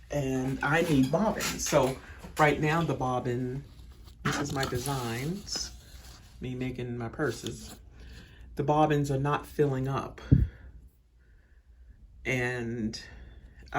and I need bobbins. So right now the bobbin, this is my designs, me making my purses. The bobbins are not filling up, and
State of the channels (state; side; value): identical; both; correlation 1.00